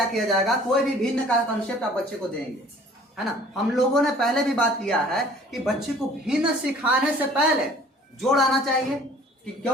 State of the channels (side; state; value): both; normal; correlation 0.51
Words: किया जाएगा, कोई भी भिन्न का कंसेप्ट आप बच्चे को देंगे, है ना। हम लोगों ने पहले भी बात किया है कि बच्चे को भिन्न सिखाने से पहले जोड़ आना चाहिए,